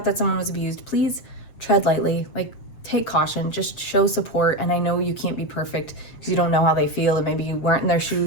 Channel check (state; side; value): late; right; 7.7 ms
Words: that someone was abused, please tread lightly, like take caution, just show support. And I know you can't be perfect because you don't know how they feel and maybe you weren't in their